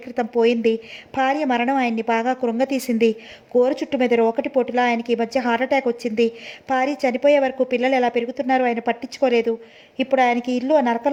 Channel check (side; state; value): both; identical; correlation 1.00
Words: క్రితం పోయింది. భార్య మరణం ఆయన్ని బాగా కృంగతీసింది. గోరు చుట్టు మీద రోకటి పోటులా ఆయనకి ఈ మధ్య హార్ట్అటాక్ వచ్చింది. భార్య చనిపోయే వరకు పిల్లలు ఎలా పెరుగుతున్నారో ఆయన పట్టించుకోలేదు. ఇప్పుడు ఆయనకి ఇల్లు